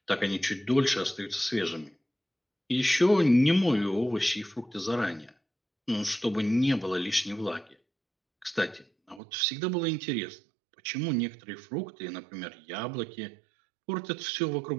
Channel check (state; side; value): drops out; left; at 9.2 s